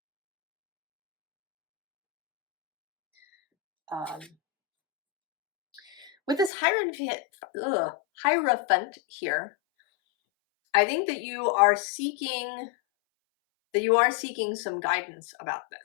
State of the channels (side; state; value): right; drops out; at 6.5 s